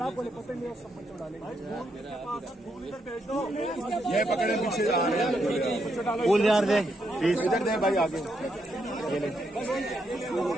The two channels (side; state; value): both; normal; correlation 0.79